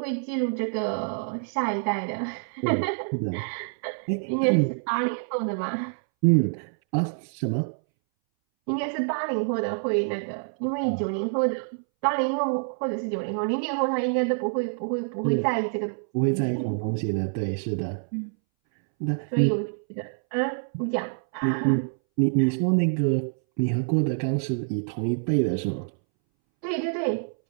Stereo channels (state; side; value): silent; left; 61 dB below the other